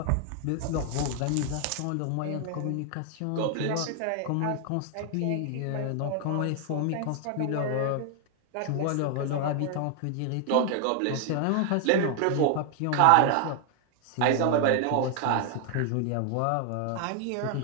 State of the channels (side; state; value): both; different; correlation 0.00